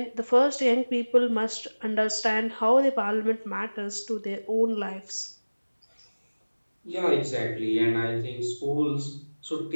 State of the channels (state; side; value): inverted; both; correlation -1.00